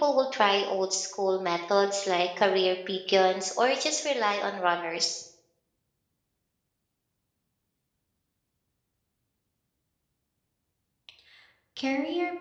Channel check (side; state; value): both; identical; correlation 1.00